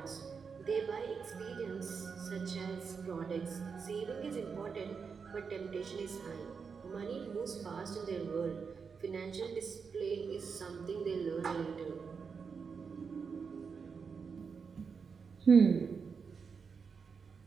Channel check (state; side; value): quieter; left; 5.7 dB